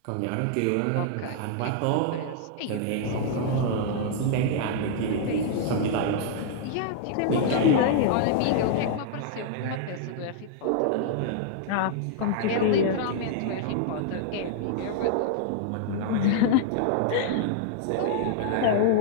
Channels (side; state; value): both; different; correlation -0.01